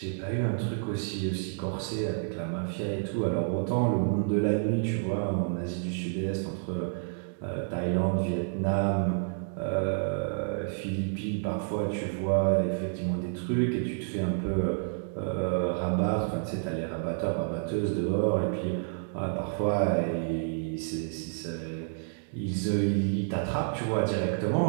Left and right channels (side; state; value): left; silent; digital silence